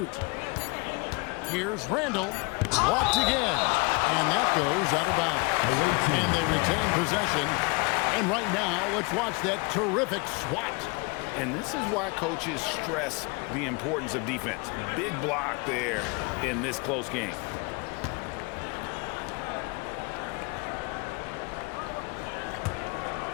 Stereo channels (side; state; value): right; quieter; 29.3 dB